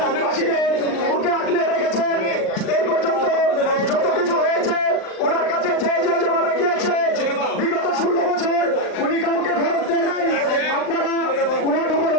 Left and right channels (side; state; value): right; late; 39 ms